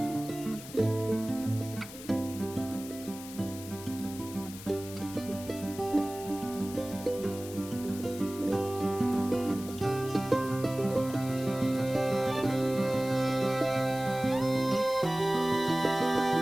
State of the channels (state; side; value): noise; left; hiss, 14 dB below the sound